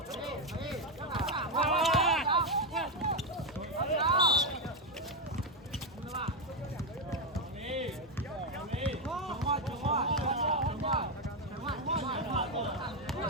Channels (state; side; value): normal; both; correlation 0.05